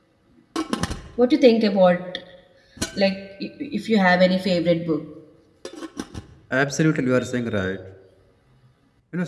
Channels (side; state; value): both; identical; correlation 1.00